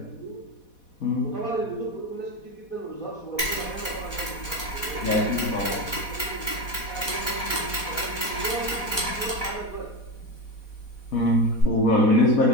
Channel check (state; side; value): late; right; 4.1 ms